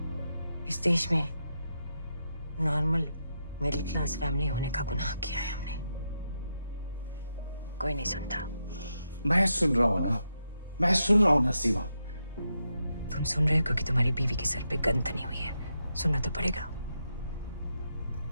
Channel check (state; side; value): inverted; both; correlation -0.84